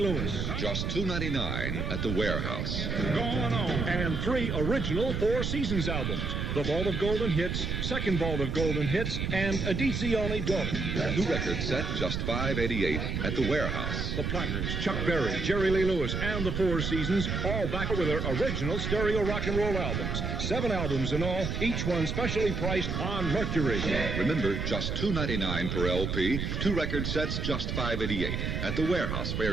Lewis. Just $2.99 at the warehouse. Going on. And 3 original Four Seasons albums. The Vault of Golden Hits, Second Vault of Golden Hits, and Edizione Dope. 2 record set, just $5.88 at the warehouse. The Platters, Chuck Berry, Jerry Lee Lewis, and the Four Seasons, all back with their original stereo rock and roll albums. 7 albums in all, each one specially priced on Mercury. Remember, just $2.99 per LP. 2 record sets, just $5.88 at the warehouse,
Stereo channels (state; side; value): noise; right; rumble, 2 dB below the sound